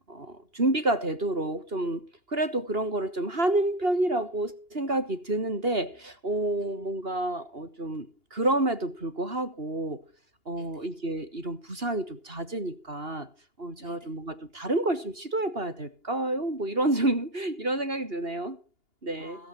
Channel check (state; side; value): late; left; 2.8 ms